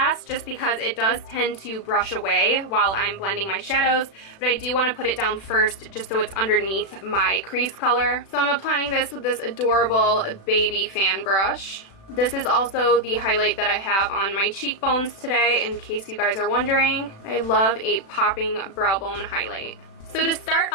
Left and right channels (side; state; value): right; late; 36 ms